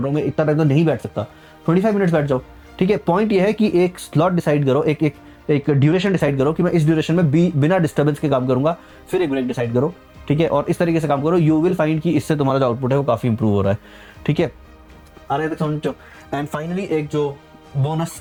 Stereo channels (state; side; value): identical; both; correlation 1.00